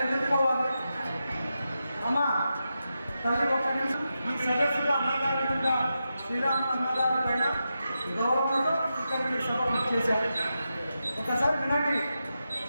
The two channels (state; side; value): inverted; both; correlation -0.89